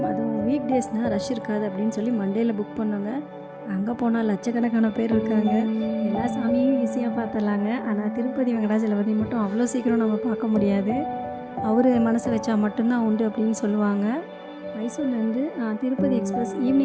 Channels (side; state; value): both; identical; correlation 1.00